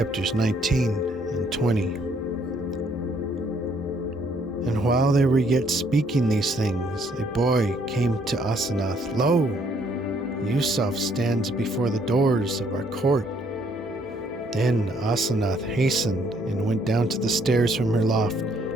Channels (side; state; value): both; normal; correlation 0.66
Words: 19 and 20. And while they were yet speaking these things, a boy came to Asanath. Lo, Yusaf stands before the doors of our court. Then Asanath hastened and went down to the stairs from her loft